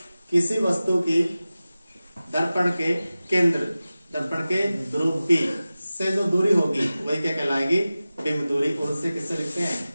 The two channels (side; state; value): both; inverted; correlation -0.96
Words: किसी वस्तु की दर्पण के केंद्र, दर्पण के ध्रुव P से जो दूरी होगी वही क्या कहलाएगी, बिंब दूरी, और उससे किससे लिखते हैं,